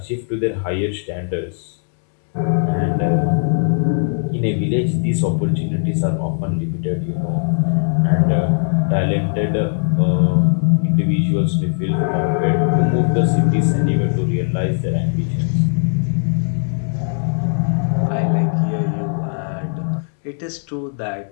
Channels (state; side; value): silent; right; digital silence